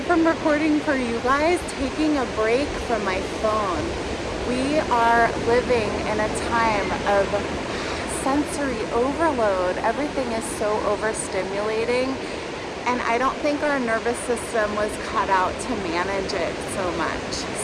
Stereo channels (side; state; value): both; identical; correlation 1.00